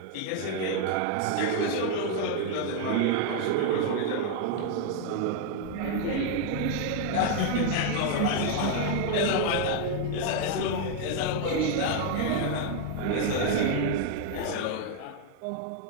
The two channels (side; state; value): both; different; correlation 0.00